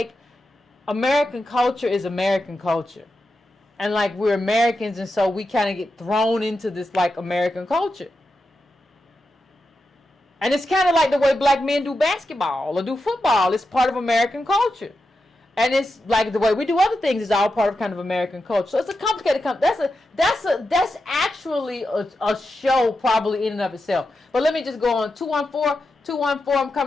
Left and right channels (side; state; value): both; normal; correlation 0.89